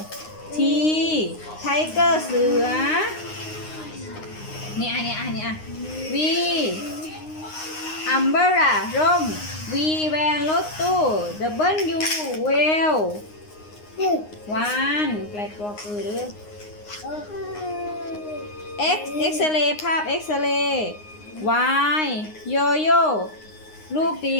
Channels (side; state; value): right; late; 9.7 ms